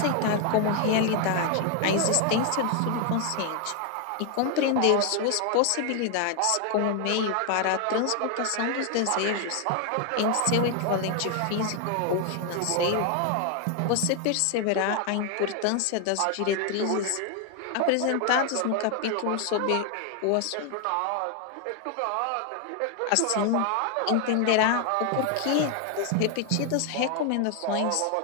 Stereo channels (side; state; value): both; different; correlation 0.00